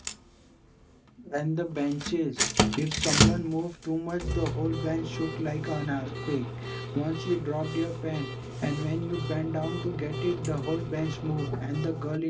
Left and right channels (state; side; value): identical; both; correlation 1.00